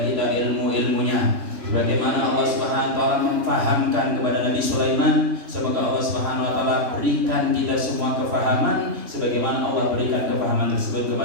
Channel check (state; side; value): late; left; 3.2 ms